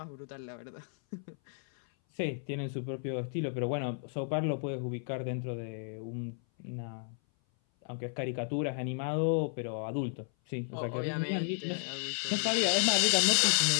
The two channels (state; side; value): silent; right; 56 dB below the other